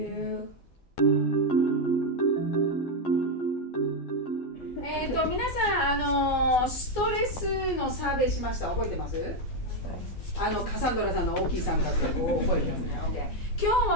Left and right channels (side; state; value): right; late; 12 ms